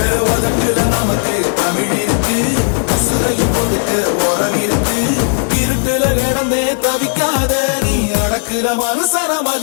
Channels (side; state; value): right; silent; 62 dB below the other